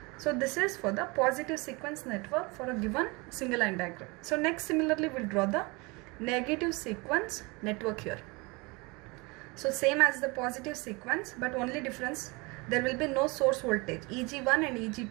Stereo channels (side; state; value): left; quieter; 26.7 dB